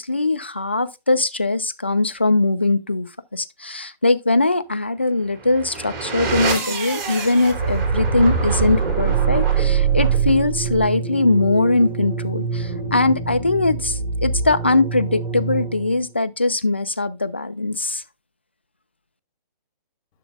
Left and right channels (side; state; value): both; inverted; correlation -0.71